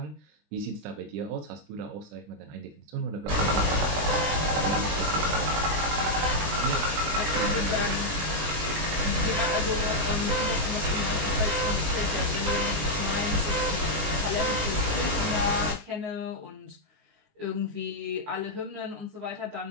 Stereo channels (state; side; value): late; left; 19 ms